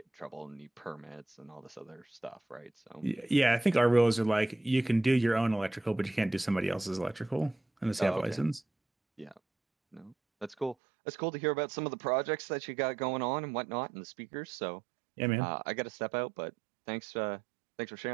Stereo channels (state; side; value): drops out; left; at 10.8 s